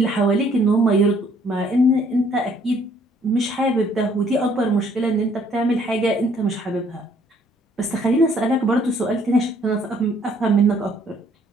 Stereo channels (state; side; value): normal; both; correlation 0.63